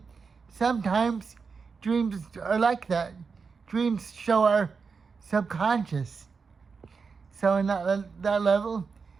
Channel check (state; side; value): quieter; left; 5.2 dB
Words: sometimes dreams are like that. Dreams show our subconscious. So in that level,